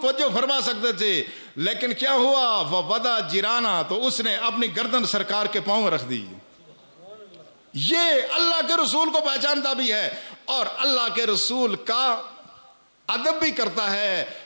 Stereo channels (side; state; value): both; inverted; correlation -1.00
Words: توجہ فرما سکتے تھے، لیکن کیا ہوا؟ وَوَدَا جِرَانَا، تو اس نے اپنی گردن سرکار کے پاؤں میں رکھ دی۔ یہ اللہ کے رسول کو پہچانتا بھی ہے اور اللہ کے رسول کا ادب بھی کرتا ہے۔